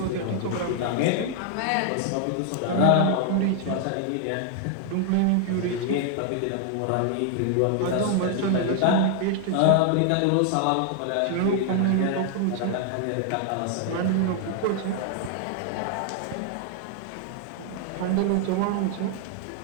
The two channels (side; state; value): both; different; correlation 0.00